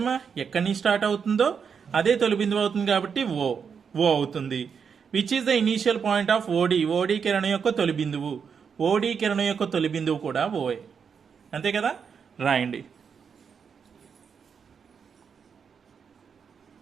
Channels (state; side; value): quieter; left; 6.5 dB